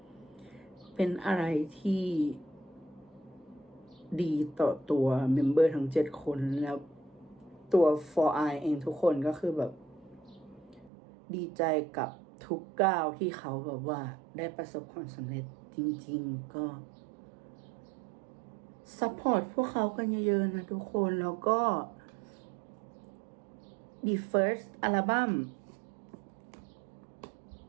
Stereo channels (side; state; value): left; drops out; at 10.9 s